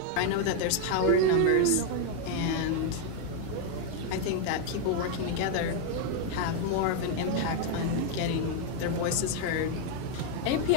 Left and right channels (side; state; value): both; different; correlation 0.00